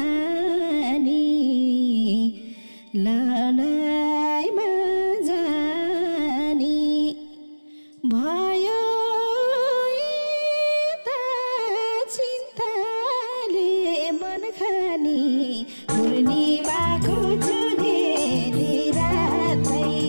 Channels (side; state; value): both; inverted; correlation -1.00